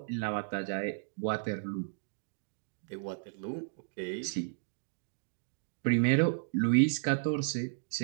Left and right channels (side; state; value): left; silent; digital silence